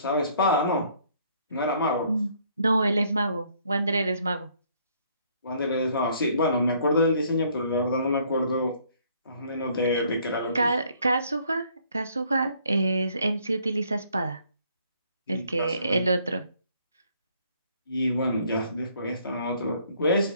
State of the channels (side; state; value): both; inverted; correlation -0.64